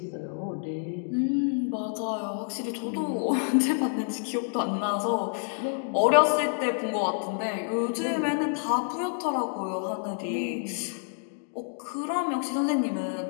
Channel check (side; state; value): right; silent; digital silence